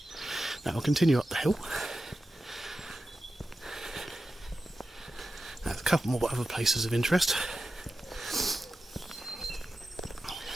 Now I'll continue up the hill. There's a couple more other places of interest.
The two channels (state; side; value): normal; both; correlation 0.92